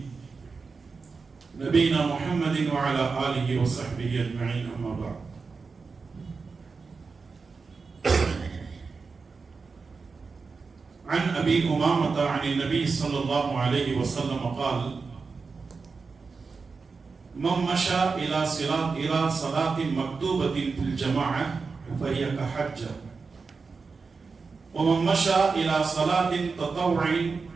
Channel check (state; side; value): quieter; left; 4.7 dB